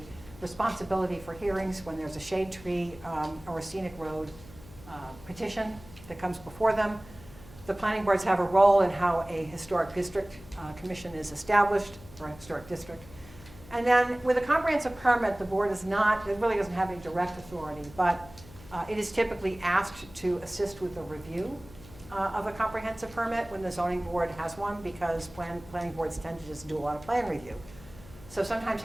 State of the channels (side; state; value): left; noise; hum, 20 dB below the sound